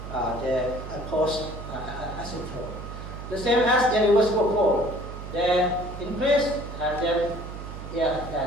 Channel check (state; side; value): noise; right; hum, 10 dB below the sound